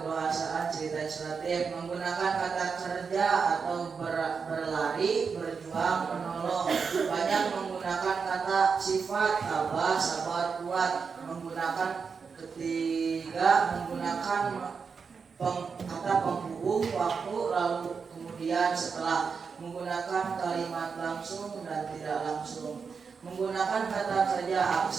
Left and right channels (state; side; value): quieter; left; 5.6 dB